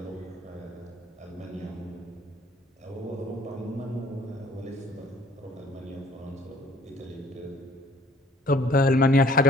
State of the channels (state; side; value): normal; both; correlation 0.57